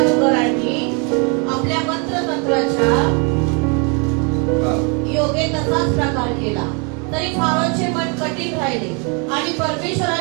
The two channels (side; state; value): left; quieter; 34.7 dB